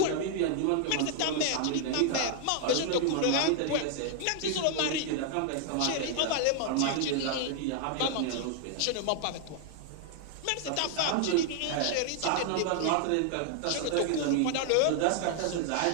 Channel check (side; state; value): both; different; correlation 0.00